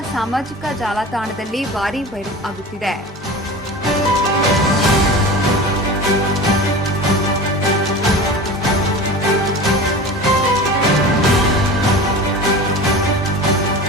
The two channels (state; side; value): normal; both; correlation 0.34